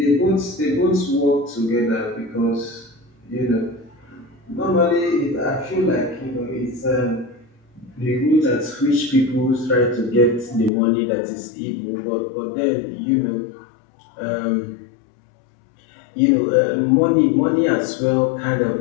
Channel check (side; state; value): right; drops out; at 10.7 s